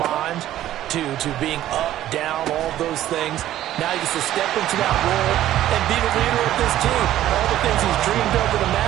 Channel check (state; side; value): quieter; left; 13.1 dB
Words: to being up, down, all those things. Now he gets to step into that role and be the leader of this team. All the things he's dreamed of and